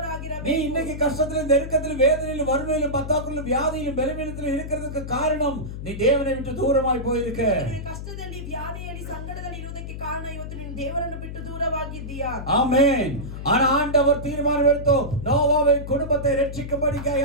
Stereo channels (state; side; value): noise; left; hum, 8 dB below the sound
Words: இன்னைக்கு கஷ்டத்திலும் நெருக்கத்திலும் வேதனையிலும் வறுமையிலும் பத்தாக்குள்ளும் வியாதியிலும் பலவீனத்திலும் இருக்கிறதுக்கு காரணம் நீ தேவனை விட்டு தூரமாய் போயிருக்க. ನೀನು ಕಷ್ಟದಲ್ಲಿ ವ್ಯಾಧಿಯಲ್ಲಿ ಸಂಕಟದಲ್ಲಿ ಇರುವುದಕ್ಕೆ ಕಾರಣ ಇವತ್ತು ನೀನು ದೇವರನ್ನು ಬಿಟ್ಟು ದೂರವಾಗಿದ್ದೀಯಾ. ஆமென். ஆனா ஆண்டவர் தீர்மானம் எடுத்து நோவாவின் குடும்பத்தை